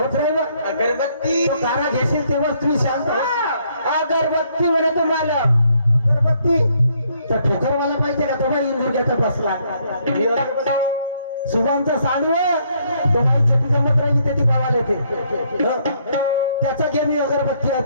राहिल अगरबत्ती तो कारा घेशील तेव्हा तुम्ही शांत अगरबत्ती म्हणे तुम्हाला अगरबत्ती तर ठोकरवाला पाहिजे का तो बाई इंदुर्गाचा बसला सुभानचा सांडव तो बाई छटी जमत राहिली ते ती पावाला येते त्याचा घे मी अगरबत्ती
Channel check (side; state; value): both; inverted; correlation -0.70